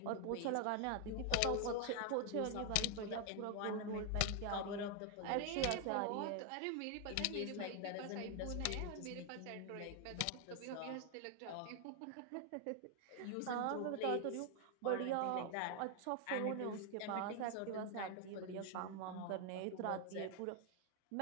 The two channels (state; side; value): different; both; correlation 0.00